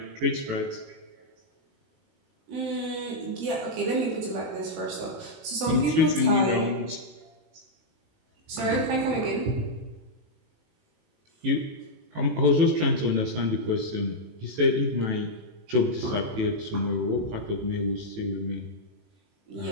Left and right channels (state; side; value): late; left; 18 ms